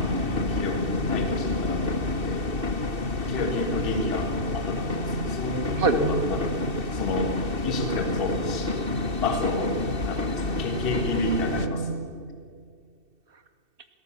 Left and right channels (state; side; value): late; left; 2.7 ms